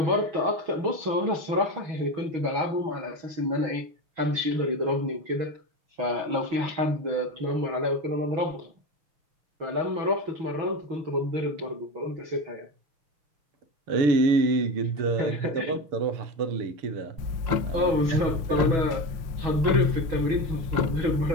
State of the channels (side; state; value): left; late; 6.2 ms